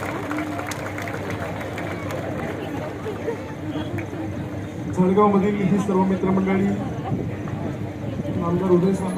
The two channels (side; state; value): both; identical; correlation 1.00